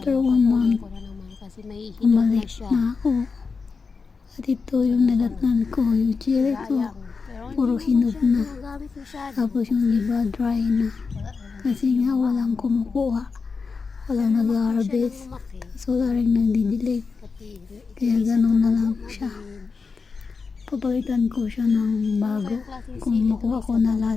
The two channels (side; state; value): right; quieter; 4.8 dB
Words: 1 month, bumalik na ako. At ito yung nadatnan ko, yung chili ko. Puro hinog na. Tapos yung iba dry na. Kasi nga walang kumukuha. Walang nag-harvest. So wala rin nagdidilig. Kaya gano'n na lang siya. Papalitan ko siya ng bago. Kung makuha ko na